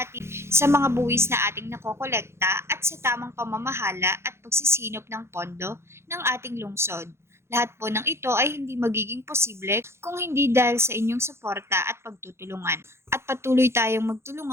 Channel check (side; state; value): left; late; 0.13 ms